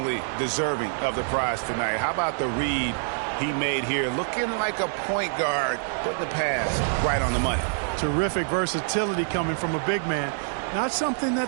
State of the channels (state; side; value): silent; left; 61 dB below the other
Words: deserving of the prize tonight. How about the read he made here? Looking like a point guard, putting the pass right on the money. Terrific versatility coming from a big man. Not something